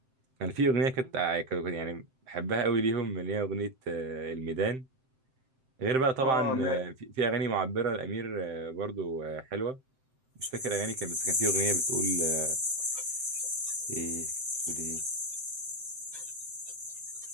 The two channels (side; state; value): left; late; 7.7 ms